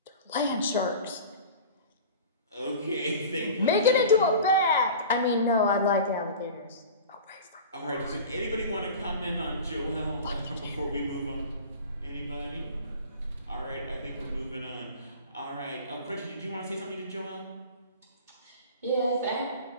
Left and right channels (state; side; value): inverted; both; correlation -0.37